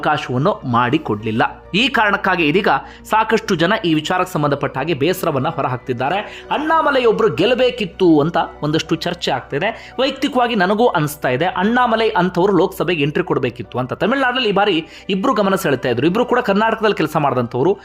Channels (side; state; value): both; identical; correlation 1.00